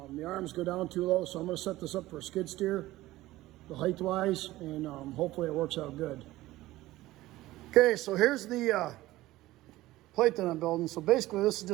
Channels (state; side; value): quieter; left; 17.1 dB